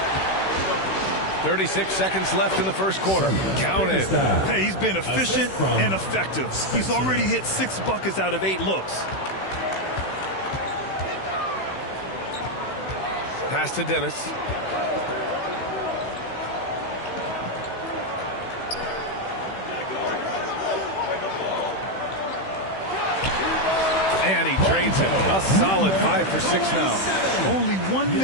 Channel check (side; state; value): right; late; 16 ms